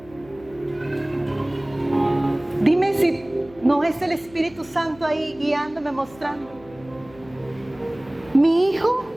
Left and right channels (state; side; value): noise; left; hum, 23 dB below the sound